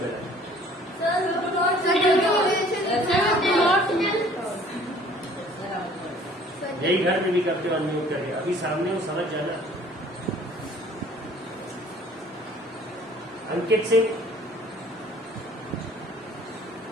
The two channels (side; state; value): both; normal; correlation 0.54